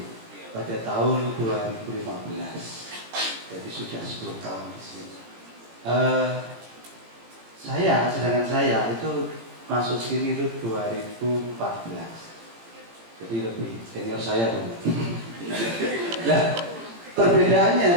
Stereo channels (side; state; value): left; late; 18 ms